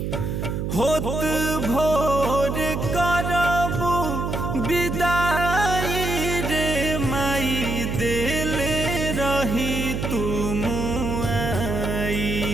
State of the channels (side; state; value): right; noise; hum, 2 dB below the sound